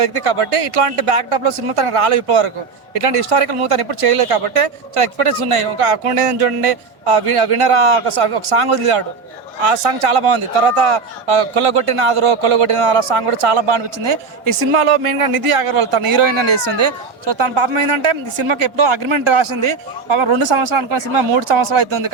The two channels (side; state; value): left; quieter; 4.8 dB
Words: కాబట్టి ఇట్లాంటి బ్యాక్ డ్రాప్ లో సినిమా తనకు రాలేదు ఇప్పటివరకు. ఇట్లాంటి హిస్టారికల్ మూవీ తను ఎప్పుడు చేయలేదు కాబట్టి చాలా ఎక్స్పెక్టేషన్స్ ఉన్నాయి. ఒక అకౌంట్ చూడండి, వినరా ఒక సాంగ్ వదిలాడు, ఆ సాంగ్ చాలా బాగుంది. తర్వాత కొల్లగొట్టిన ఆ సాంగ్ కూడా చాలా బాగా అనిపించింది. ఈ సినిమాలో మెయిన్గా నిధి అగర్వాల్ తన హీరోయిన్ అని వేస్తుంది. సో తన పాపం ఏంటంటే ఈ సినిమాకి ఎప్పుడో అగ్రిమెంట్ రాసింది, పాపం 2 సంవత్సరాలు అనుకున్న సినిమా 3 సంవత్సరాలు అవుతుంది